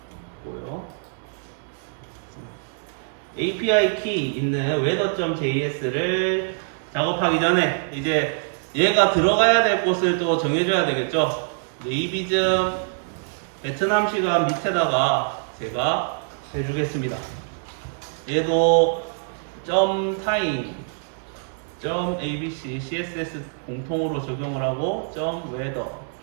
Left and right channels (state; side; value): silent; left; digital silence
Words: API 키 있는 weather.js를 작업하기 전에 이제 얘가 들어가야 될 곳을 또 정해줘야 되겠죠. 네이비즘 베트남 시간 밑에다가 제가 해주겠습니다. 얘도 .time, .abc, css 공통으로 적용을 하고 .weather